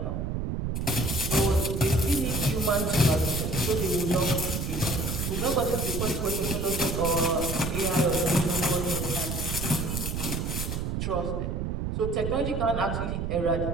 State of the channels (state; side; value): noise; right; rumble, 2 dB below the sound